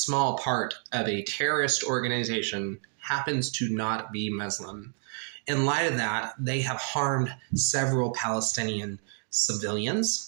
part of a terrorist organization happens to not be Muslim. In light of that, they have harmed several Palestinian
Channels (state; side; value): silent; left; 56 dB below the other